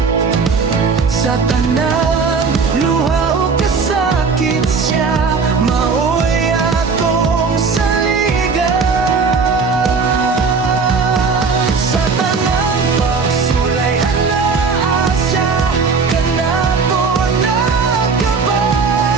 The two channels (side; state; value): left; quieter; 4.9 dB